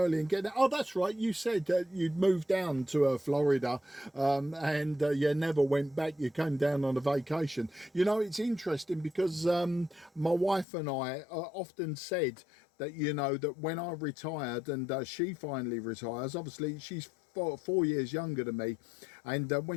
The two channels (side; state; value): right; drops out; at 10.7 s